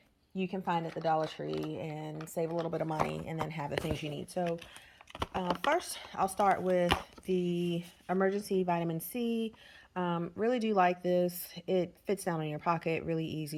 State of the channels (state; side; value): identical; both; correlation 1.00